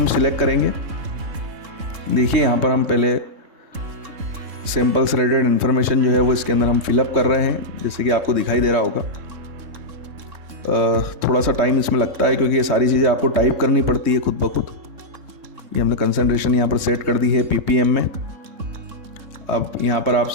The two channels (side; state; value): left; late; 3.6 ms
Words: सिलेक्ट करेंगे। देखिए यहाँ पर हम पहले सैंपल्स रिलेटेड इन्फॉर्मेशन जो है वो इसके अंदर हम फिलअप कर रहे हैं, जैसे कि आपको दिखाई दे रहा होगा। थोड़ा सा टाइम इसमें लगता है क्योंकि ये सारी चीज़ें आपको टाइप करनी पड़ती है खुद ब खुद। ये हमने कंसंट्रेशन यहाँ पर सेट कर दी है ppm में। अब यहाँ पर आप